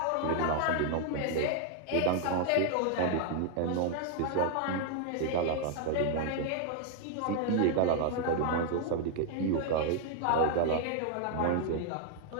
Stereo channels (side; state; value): both; different; correlation 0.00